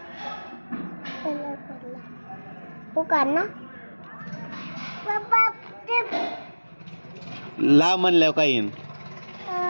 पुकार ना ला म्हणल्यावर काय येईन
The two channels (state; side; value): inverted; both; correlation -1.00